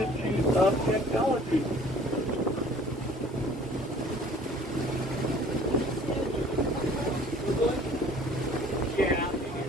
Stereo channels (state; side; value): normal; both; correlation 0.52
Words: of Technology. Yeah, they do